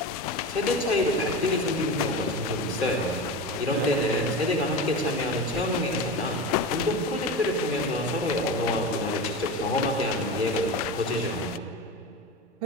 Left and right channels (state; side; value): normal; both; correlation 0.25